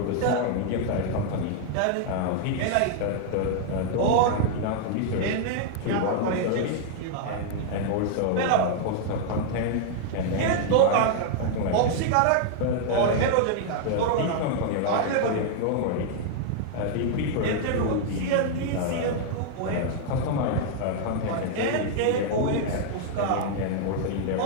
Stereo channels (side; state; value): both; different; correlation -0.01